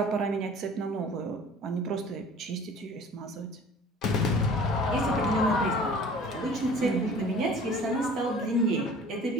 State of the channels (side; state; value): both; normal; correlation 0.47